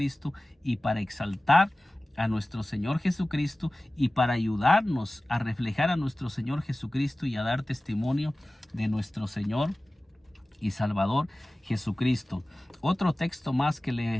y para exaltar a nuestro Señor Jesucristo y para ayudarnos a reflejar a nuestro Señor Jesucristo y a dar testimonio de nuestro Señor y Salvador Jesucristo. Otro texto más que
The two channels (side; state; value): both; normal; correlation 0.97